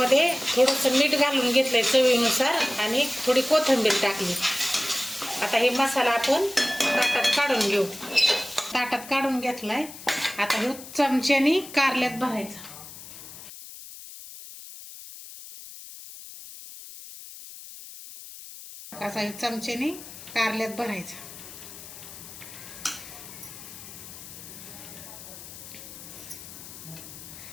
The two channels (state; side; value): noise; left; hiss, 15 dB below the sound